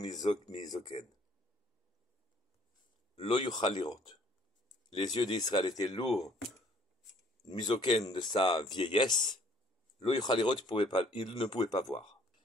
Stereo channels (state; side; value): normal; both; correlation 0.59